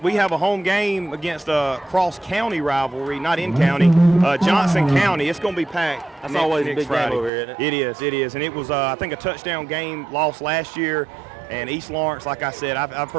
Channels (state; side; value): drops out; left; at 7.3 s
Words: we have a home game against a cross-county rivalry, not in county, Johnson County. It's going to be packed. That's always a big Friday. game over here, isn't it? It is. And it was, I think, a touchdown game lost last year. And East Lawrence, like I said, I've